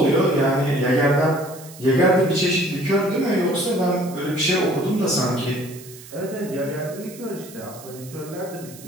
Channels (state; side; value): noise; right; hiss, 18 dB below the sound